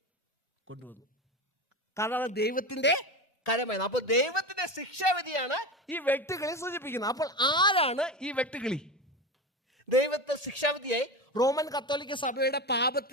കൊണ്ടുവന്നു. കാരണം ദൈവത്തിന്റെ കരമായിരുന്നു. അപ്പൊ ദൈവത്തിന്റെ ശിക്ഷാവിധിയാണ് ഈ വെട്ടുകിളി സൂചിപ്പിക്കുന്നത്. അപ്പോൾ ആരാണ് ഈ വെട്ടുകിളി? ദൈവത്തെ ശിക്ഷാവിധിയായി റോമൻ കത്തോലിക്ക സഭയുടെ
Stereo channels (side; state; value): both; normal; correlation 0.23